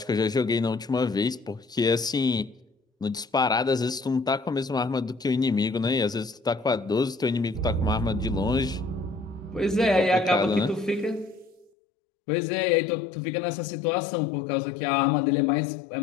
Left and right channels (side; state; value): right; drops out; at 11.7 s